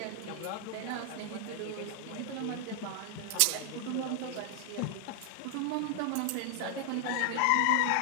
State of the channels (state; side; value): different; both; correlation 0.00